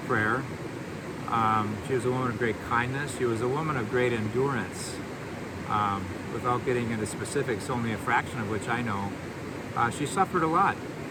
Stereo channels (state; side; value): identical; both; correlation 1.00